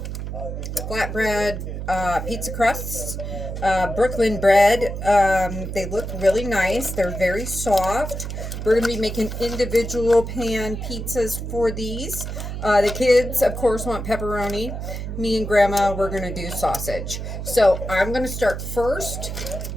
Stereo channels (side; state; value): right; noise; hum, 6 dB below the sound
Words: flatbread pizza crusts, Brooklyn bread. They look really nice. They're very soft. We're going to be making individual pan pizzas for these. The kids, of course, want pepperoni. Me and Grandma, we're going to do sausage. So I'm going to start first